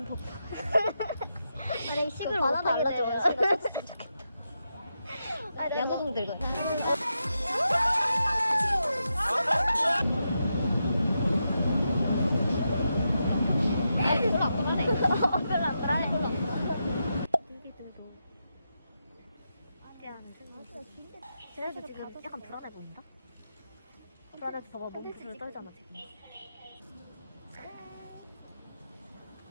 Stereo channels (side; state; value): both; inverted; correlation -0.86